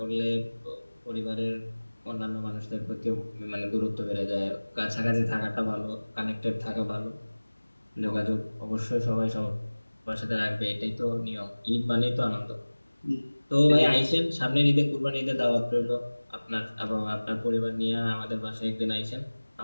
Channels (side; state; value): both; inverted; correlation -1.00